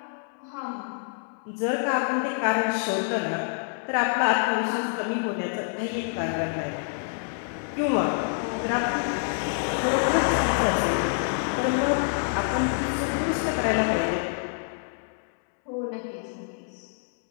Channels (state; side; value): silent; right; digital silence